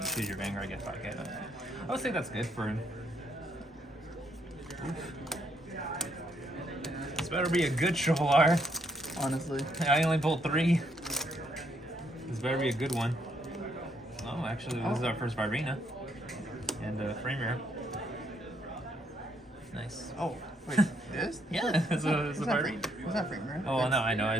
choose your Vanguard, get 5 hit. I would say that's good for him. This better be a good triple R. honestly. I only pulled 3. This better be a good one. Oh, actually, this is our first Virena. And frame rare. Nice. Oh, wait, this? Yeah, it's a Virena. Was that frame rare? Oh, no, I know.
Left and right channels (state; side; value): normal; both; correlation 0.73